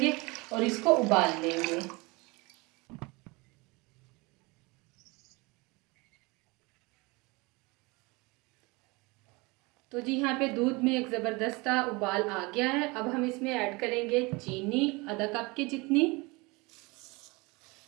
और इसको उबाल लेंगे। तो जी यहाँ पे दूध में एक ज़बरदस्त उबाल आ गया है। अब हम इसमें ऐड करेंगे चीनी आधा कप के जितनी।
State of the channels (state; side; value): quieter; left; 25.6 dB